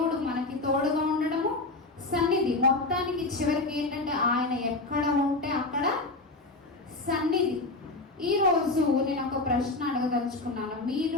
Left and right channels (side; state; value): right; quieter; 3.1 dB